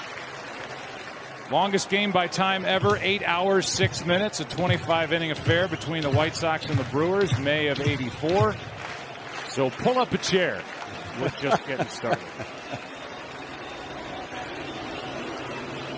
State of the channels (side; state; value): both; identical; correlation 1.00